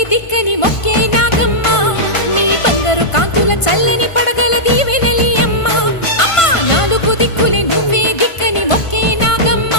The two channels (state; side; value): late; right; 1.5 ms